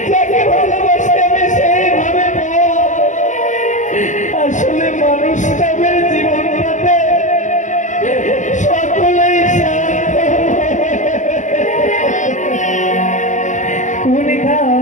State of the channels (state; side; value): late; right; 0.36 ms